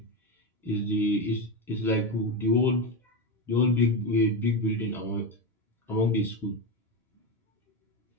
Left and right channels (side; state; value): both; normal; correlation 0.14